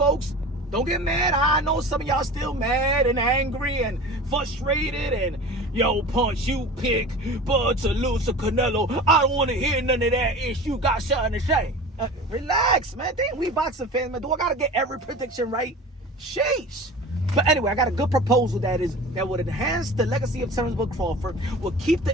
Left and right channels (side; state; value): both; normal; correlation 0.36